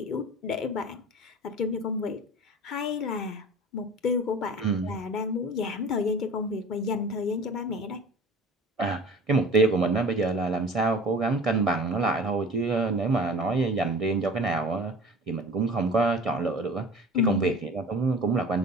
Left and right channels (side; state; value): both; normal; correlation 0.40